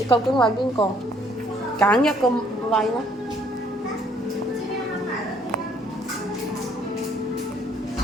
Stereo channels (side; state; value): both; normal; correlation 0.64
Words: 竟餵邊個？揀一個餵啦。